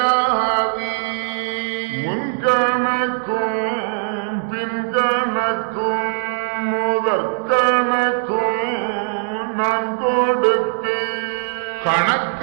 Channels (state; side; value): silent; left; digital silence